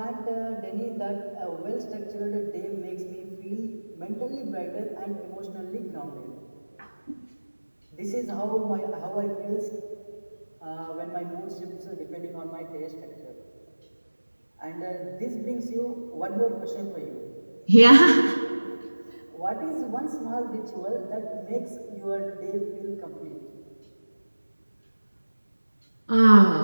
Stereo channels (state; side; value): inverted; both; correlation -1.00